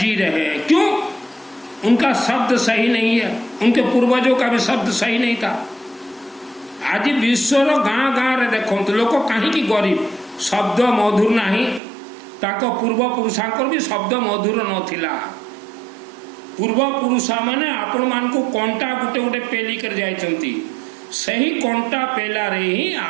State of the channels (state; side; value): drops out; left; at 11.8 s